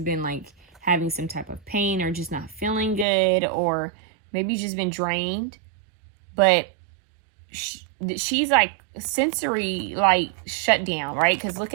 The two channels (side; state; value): left; drops out; at 3.1 s